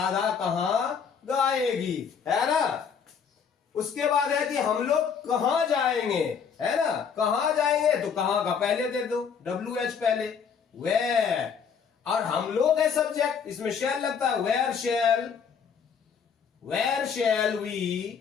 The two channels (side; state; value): right; quieter; 6.7 dB